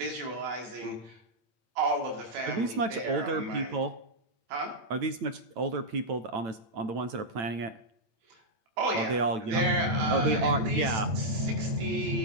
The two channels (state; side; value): late; left; 9.0 ms